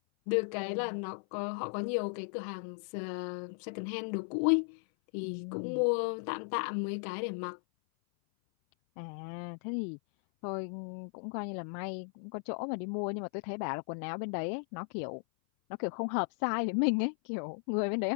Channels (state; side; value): silent; right; 54 dB below the other